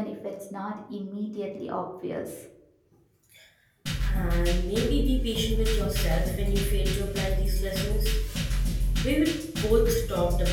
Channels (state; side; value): identical; both; correlation 1.00